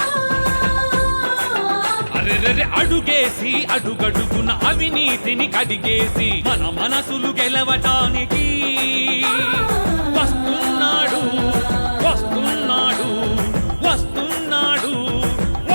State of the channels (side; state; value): both; inverted; correlation -1.00